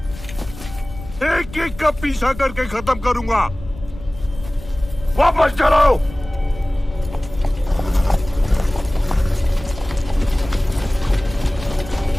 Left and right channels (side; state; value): left; noise; rumble, 15 dB below the sound